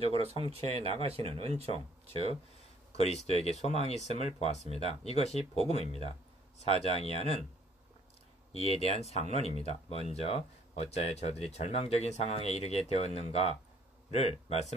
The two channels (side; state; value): both; normal; correlation 0.61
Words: 성취해 나가시는 은총, 즉 그리스도에게 소망이 있음을 보았습니다. 이것이 복음입니다. 4장 이하는 이에 대한 상론입니다. 먼저 어찌하여 저들이 절망적인 상황에 이르게 되었는가를